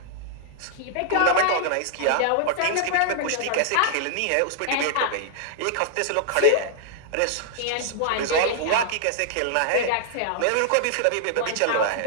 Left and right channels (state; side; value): different; both; correlation -0.01